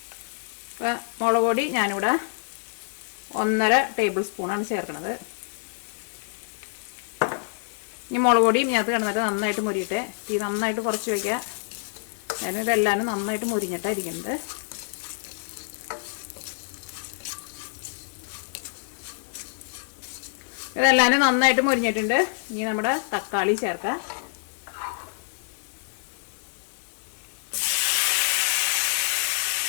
അപ്പോൾ മുളക് പൊടി ഞാനിവിടെ 1.5 ടേബിൾ സ്പൂണാണ് ചേർക്കുന്നത്. ഇനി മുളക് പൊടിയും ഇതിനകത്ത് കിടന്നിട്ട് നന്നായിട്ട് മുരിയട്ടെ. തീ നന്നായിട്ട് കുറച്ച് വയ്ക്കുക. കാരണം ഇതെല്ലാവരും നന്നായിട്ട് മുരിഞ്ഞിട്ടായിരിക്കുന്നത്. ഇതെല്ലാവരും നന്നായിട്ട് മുരിഞ്ഞിട്ടുണ്ട്. ഇനി നമ്മുടെ തക്കാളി ചേർക്കാം.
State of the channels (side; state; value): right; silent; digital silence